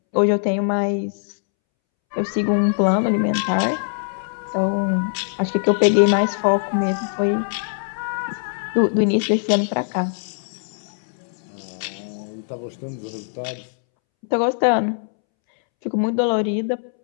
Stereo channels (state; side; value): silent; right; 64 dB below the other